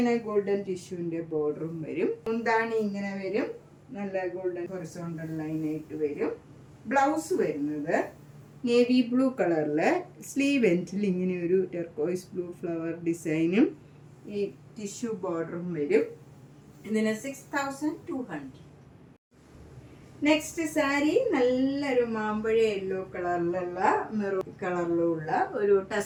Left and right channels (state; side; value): identical; both; correlation 1.00